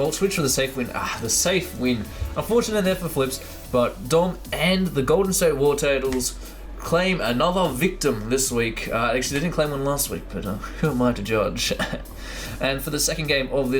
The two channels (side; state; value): both; identical; correlation 1.00